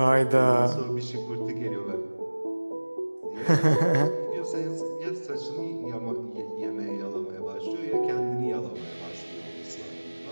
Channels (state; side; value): inverted; both; correlation -1.00